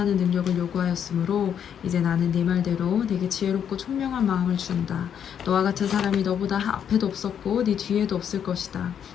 능력을 요구하였으므로 이제 나는 네 말대로 내게 지혜롭고 총명한 마음을 준다. 너와 같은 사람이 너보다 앞에도 없었고 네 뒤에도 없을 것이다.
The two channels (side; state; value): right; quieter; 8.6 dB